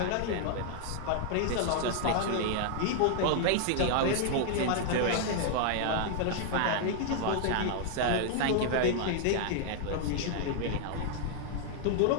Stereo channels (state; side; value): different; both; correlation 0.00